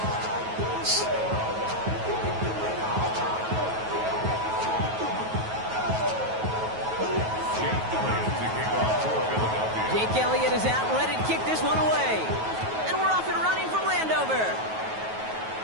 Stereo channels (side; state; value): left; late; 9.3 ms